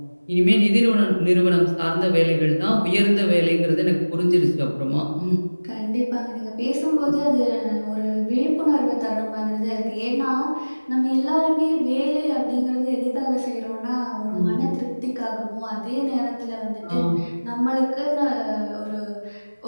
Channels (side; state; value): both; inverted; correlation -1.00